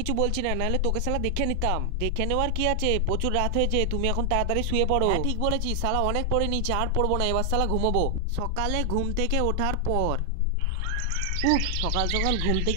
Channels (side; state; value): both; different; correlation 0.00